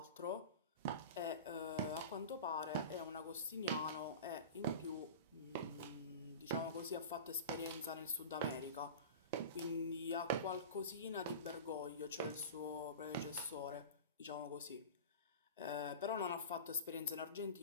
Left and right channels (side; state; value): both; inverted; correlation -0.32